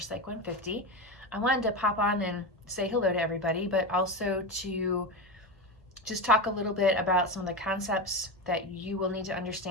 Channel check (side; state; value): both; normal; correlation 0.19